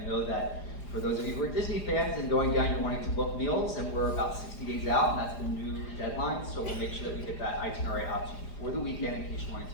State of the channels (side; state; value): right; late; 4.9 ms